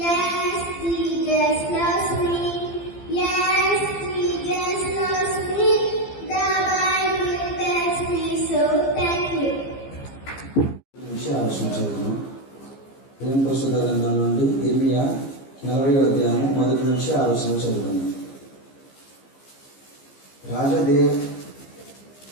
దేవుని పరిశుద్ధ గ్రంథం నుండి ఇర్మియా 40వ అధ్యాయం 1 నుంచి 6 చదువుకుందాం.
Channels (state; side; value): late; right; 15 ms